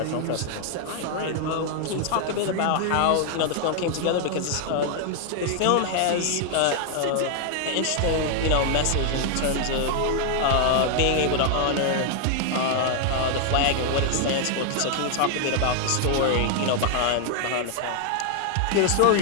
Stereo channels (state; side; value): different; both; correlation 0.00